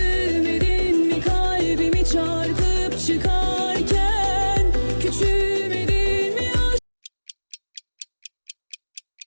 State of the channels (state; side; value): inverted; both; correlation -1.00